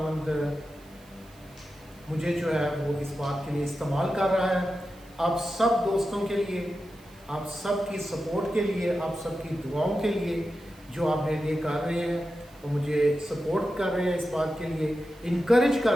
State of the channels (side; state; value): right; noise; hiss, 27 dB below the sound